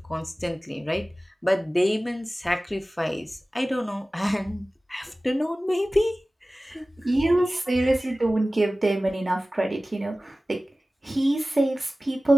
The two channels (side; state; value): both; normal; correlation 0.97